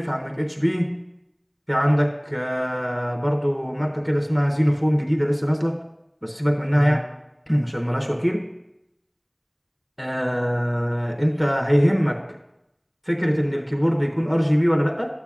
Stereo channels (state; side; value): identical; both; correlation 1.00